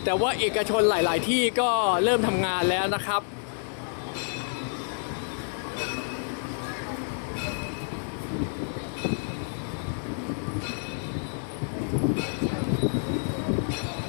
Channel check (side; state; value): right; silent; digital silence